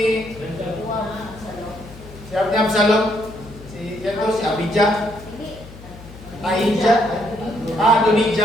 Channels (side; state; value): left; noise; hum, 17 dB below the sound